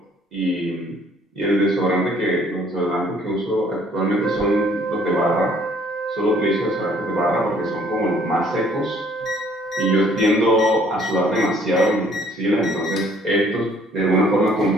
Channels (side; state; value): both; normal; correlation 0.60